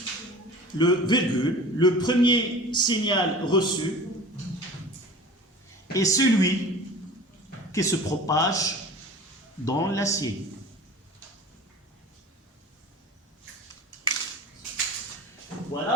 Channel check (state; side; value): normal; both; correlation 0.39